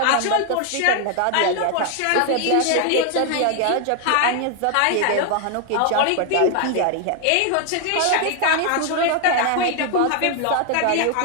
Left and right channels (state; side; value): different; both; correlation 0.00